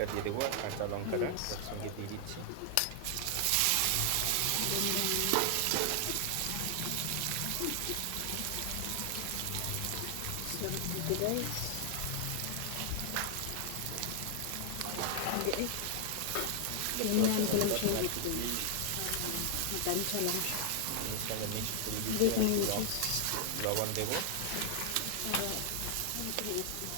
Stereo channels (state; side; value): different; both; correlation 0.00